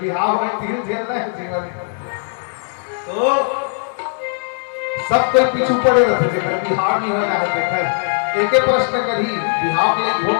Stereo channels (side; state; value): right; silent; digital silence